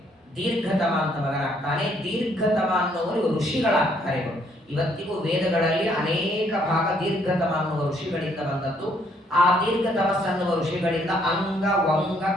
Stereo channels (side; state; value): both; normal; correlation 0.68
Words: ದೀರ್ಘತಮ ಅಂತ ಮಗನಾಗ್ತಾನೆ. ದೀರ್ಘತಮ ಅನ್ನುವರು ಋಷಿಗಳಾಗ್ತಾರೆ. ಇವತ್ತಿಗೂ ವೇದಗಳಲ್ಲಿ ಅನೇಕ ಭಾಗ ದೀರ್ಘತಮ ಅನ್ನುವ ಋಷಿಗಳಿಂದ ಬಂದದ್ದು. ಆ ದೀರ್ಘತಮಸ್ ಅನ್ನುವ ಋಷಿಗಳಿಂದ ಅಂಗ, ವಂಗ,